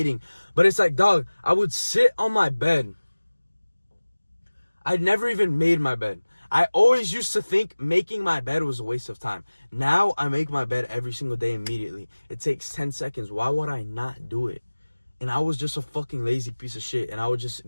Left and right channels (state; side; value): inverted; both; correlation -1.00